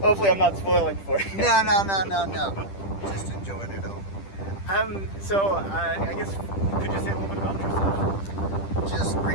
I'm not spoiling for you. No. Just enjoying it all. I guess, could you say a little bit about yourself? Just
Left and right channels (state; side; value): late; right; 10 ms